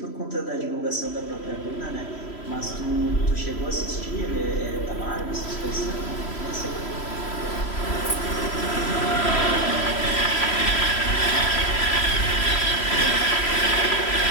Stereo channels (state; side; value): late; right; 3.0 ms